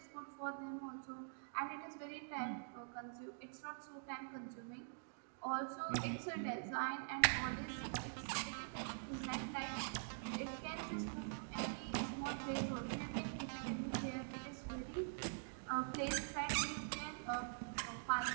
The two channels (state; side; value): silent; left; digital silence